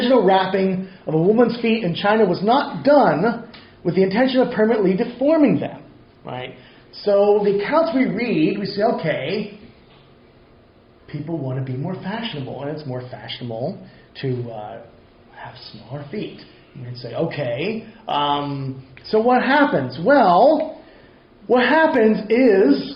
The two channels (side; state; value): both; identical; correlation 1.00